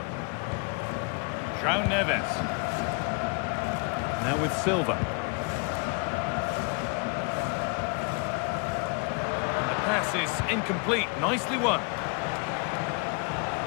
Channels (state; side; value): quieter; right; 33.3 dB